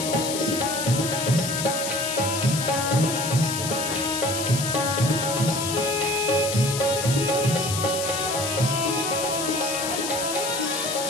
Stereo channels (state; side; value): noise; left; hiss, 4 dB below the sound